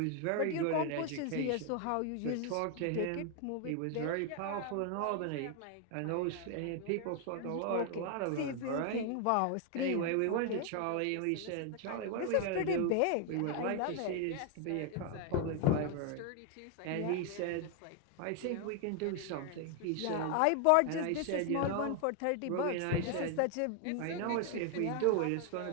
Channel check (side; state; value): both; different; correlation 0.00